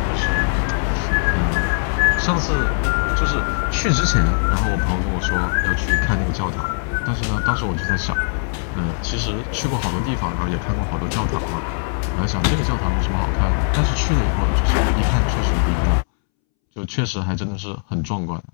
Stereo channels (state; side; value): silent; right; 66 dB below the other